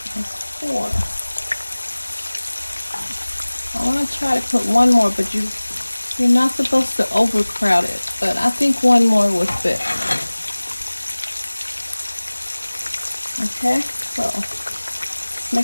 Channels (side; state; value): both; inverted; correlation -1.00